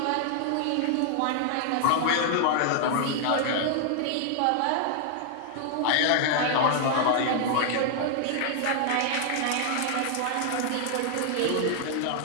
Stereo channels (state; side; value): different; both; correlation 0.00